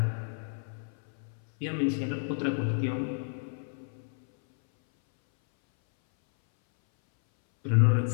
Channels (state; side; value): silent; right; 58 dB below the other